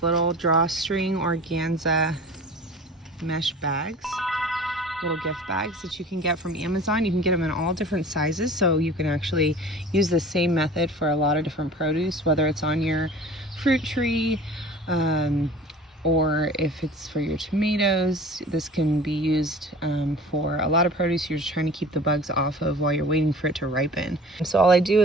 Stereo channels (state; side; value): normal; both; correlation 0.42